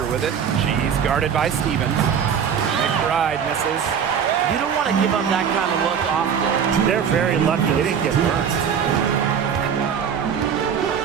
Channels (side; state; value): left; quieter; 7.6 dB